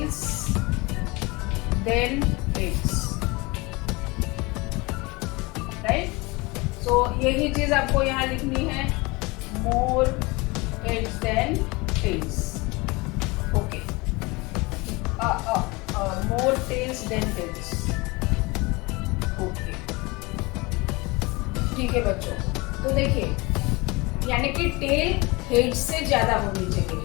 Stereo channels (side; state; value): right; quieter; 24.8 dB